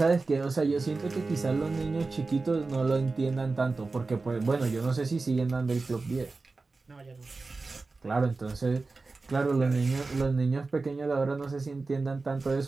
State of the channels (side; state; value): left; quieter; 3.8 dB